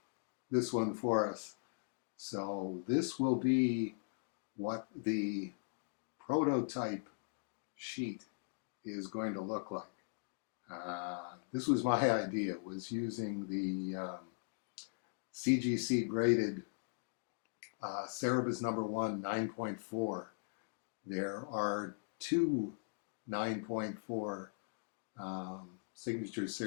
one for us. So this will be what the prototype sheet is going to look like. This was my idea, was using the CGC graded Cerebus number 1 9.4. There are two 9.4 signature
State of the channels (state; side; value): silent; right; digital silence